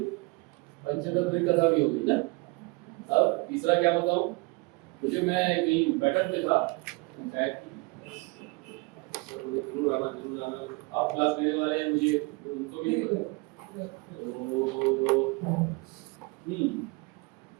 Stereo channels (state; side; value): quieter; left; 27.0 dB